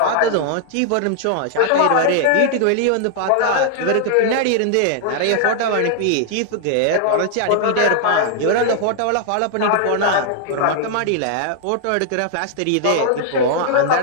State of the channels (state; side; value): different; both; correlation 0.00